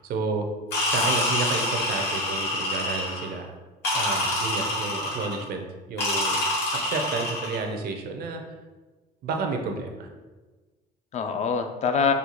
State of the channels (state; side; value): normal; both; correlation 0.14